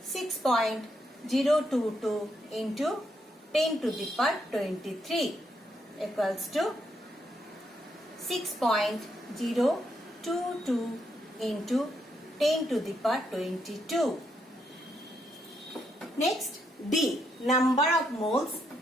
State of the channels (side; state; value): both; normal; correlation 0.77